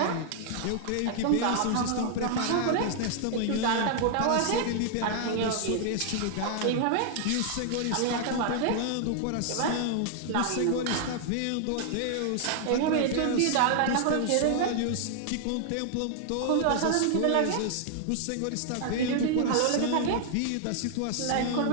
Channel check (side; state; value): both; different; correlation 0.00